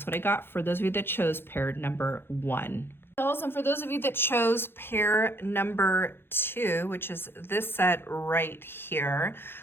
what I got for those of you that chose pair number 1. And for those of you that chose pair number 2, which is this set right here,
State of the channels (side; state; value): right; late; 0.11 ms